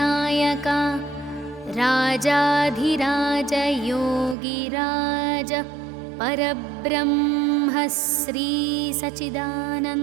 రాజాధిరాజ యోగిరాజ పరబ్రహ్మ శ్రీ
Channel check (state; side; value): drops out; left; at 4.4 s